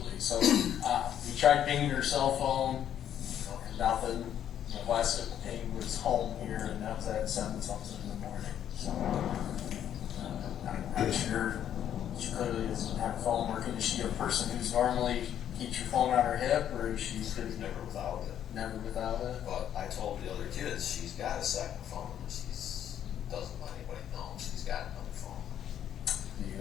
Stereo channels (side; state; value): right; quieter; 10.1 dB